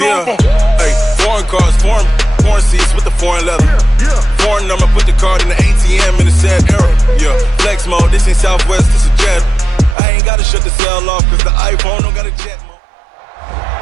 Hey, foreign cars, foreign seats with the foreign leather. Foreign number, put the card in the ATM in the sad era. Yeah, flex mode, this ain't Southwest, this is jet. I ain't gotta shut the cell off because the iPhone don't got a jet mode.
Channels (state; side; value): drops out; left; at 10.0 s